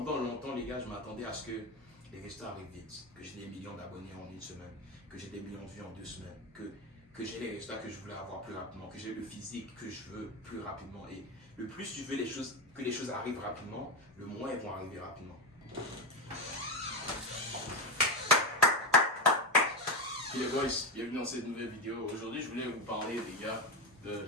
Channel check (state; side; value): normal; both; correlation 0.14